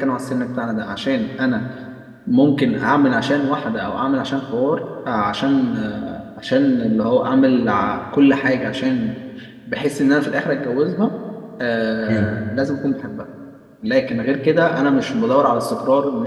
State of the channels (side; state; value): both; identical; correlation 1.00